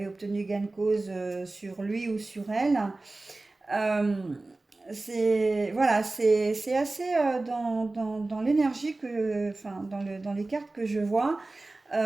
obtenu gain de cause sur lui ou sur elle. Euh, voilà, c'est assez dans l'énergie enfin, dans les cartes que je vois.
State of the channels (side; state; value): left; quieter; 3.1 dB